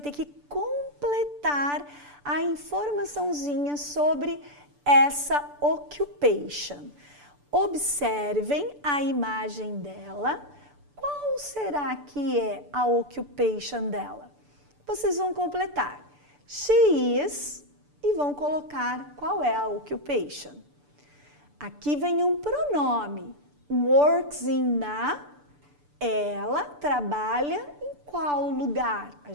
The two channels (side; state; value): left; late; 6.9 ms